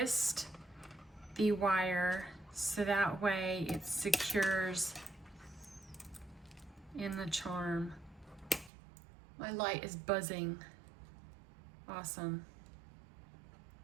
the wire so that way it secures in the charm. My light is buzzing. Awesome.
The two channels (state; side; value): drops out; left; at 8.7 s